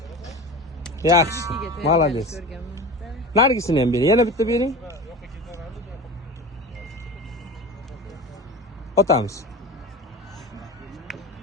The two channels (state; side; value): normal; both; correlation 0.32